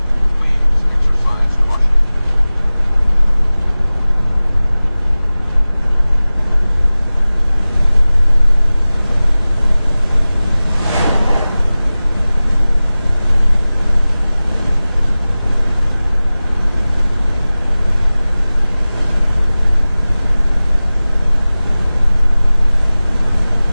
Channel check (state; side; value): inverted; both; correlation -0.98